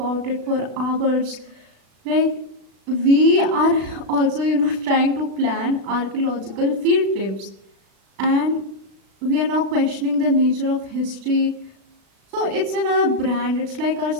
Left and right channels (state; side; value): late; left; 36 ms